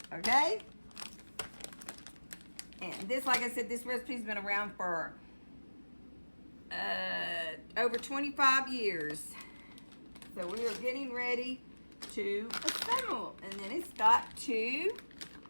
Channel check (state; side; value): inverted; both; correlation -1.00